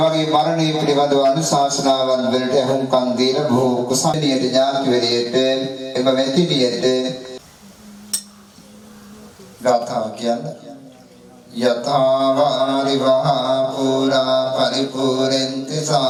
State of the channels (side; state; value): both; identical; correlation 1.00